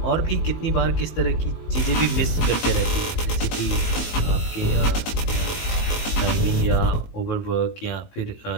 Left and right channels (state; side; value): late; right; 18 ms